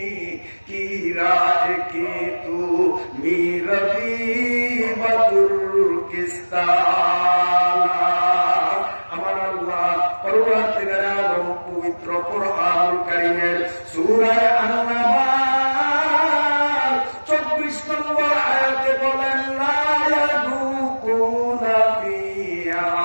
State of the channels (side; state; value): both; inverted; correlation -1.00